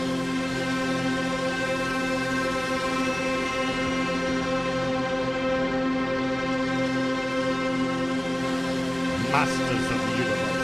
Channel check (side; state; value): left; noise; hum, 24 dB below the sound